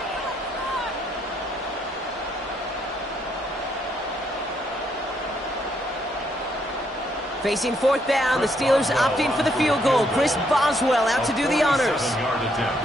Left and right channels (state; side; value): normal; both; correlation 0.73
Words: Facing 4th down, the Steelers opting for the field goal. Chris Boswell out to do the honors.